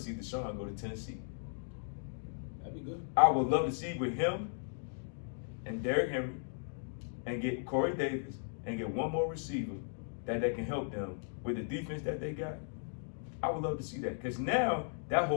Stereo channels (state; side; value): silent; right; digital silence